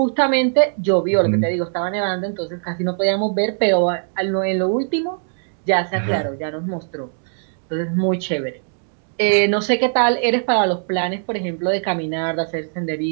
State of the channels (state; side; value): silent; left; 65 dB below the other